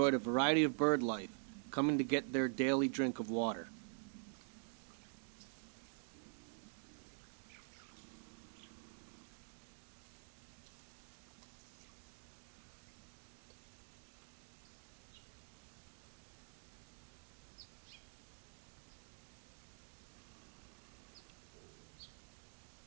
a variety of bird life, coming to get their daily drink of water.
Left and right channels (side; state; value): left; silent; digital silence